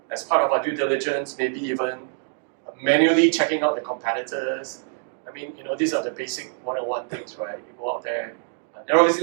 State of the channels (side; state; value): left; silent; digital silence